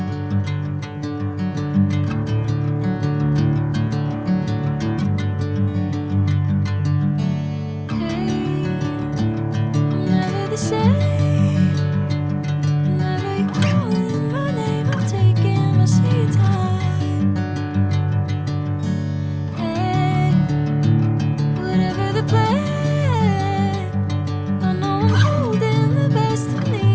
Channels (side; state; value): both; identical; correlation 1.00